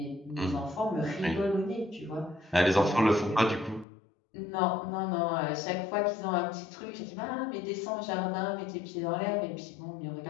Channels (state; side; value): drops out; right; at 3.9 s